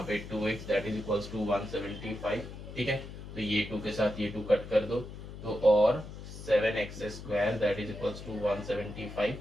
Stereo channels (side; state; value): left; noise; hum, 12 dB below the sound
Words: पे 2x that is equals to 175, ठीक है। तो ये 2 के साथ ये 2 कट कर दो, तो और 7x square that is equals to 175,